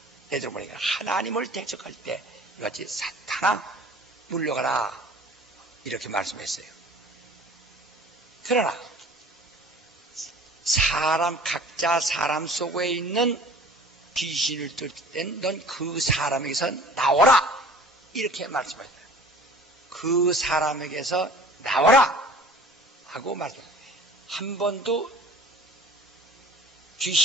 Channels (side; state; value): both; normal; correlation 0.46